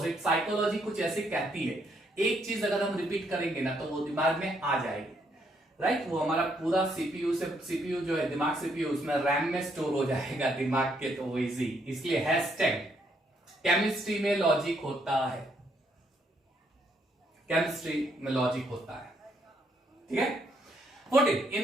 साइकोलॉजी कुछ ऐसे कहती है, एक चीज अगर हम रिपीट करेंगे ना तो वो दिमाग में आ जाएगी, राइट। वो हमारा पूरा सीपीयू जो है, दिमाग सीपीयू, उसमें रैम में स्टोर हो जाएगा दिमाग के, तो वो इजी। इसलिए हैशटैग केमिस्ट्री में लॉजिक होता है, केमिस्ट्री में लॉजिक होता है। ठीक है, 14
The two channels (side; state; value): both; normal; correlation 0.72